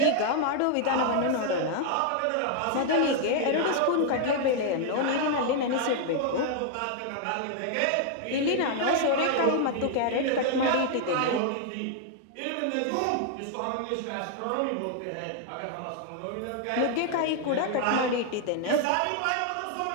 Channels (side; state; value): both; different; correlation 0.00